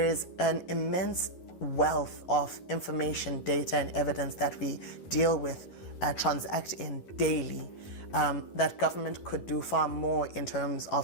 is an immense wealth of information, data, and evidence that we deal with, transact in daily, that government could do far more in terms of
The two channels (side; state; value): right; late; 11 ms